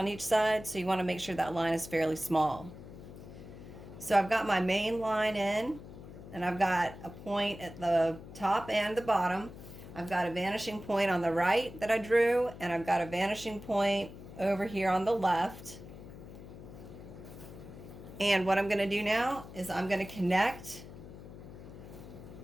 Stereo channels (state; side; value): noise; left; hum, 15 dB below the sound